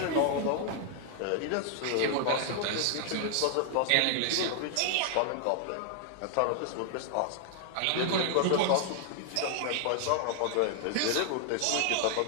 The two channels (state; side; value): different; both; correlation 0.00